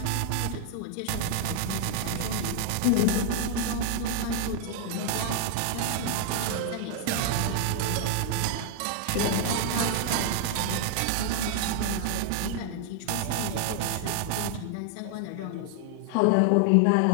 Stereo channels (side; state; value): both; different; correlation 0.00